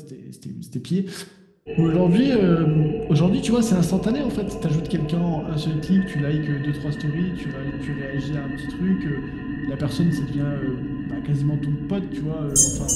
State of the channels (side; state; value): both; identical; correlation 1.00